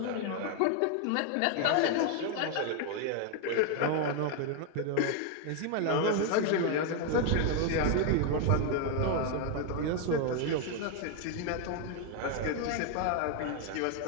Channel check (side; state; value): both; different; correlation 0.01